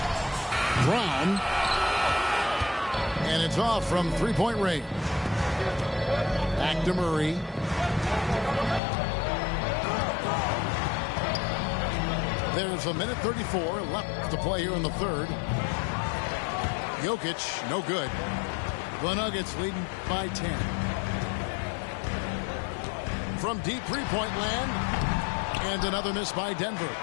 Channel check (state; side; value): drops out; right; at 8.8 s